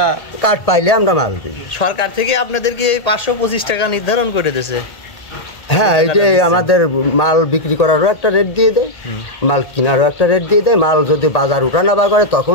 কার্ড পাইলে আমরা মাল দিই। সরকার থেকে আপনাদেরকে এই 525 টাকা নির্ধারণ করে দিয়েছে? হ্যাঁ, এটাই আমাদের মাল বিক্রি করারও একটা রেট দিয়ে দেয়, মাল কেনারও একটা রেট দিয়ে দেয়। মাল যদি বাজার উঠানাবা করে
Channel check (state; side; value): late; right; 1.8 ms